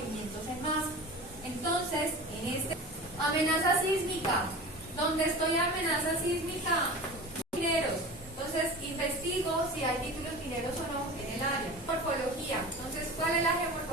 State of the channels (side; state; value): both; normal; correlation 0.34